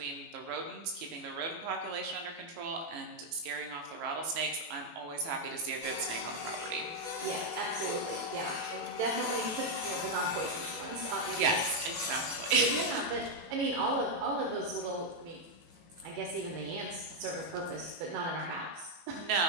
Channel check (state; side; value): late; left; 18 ms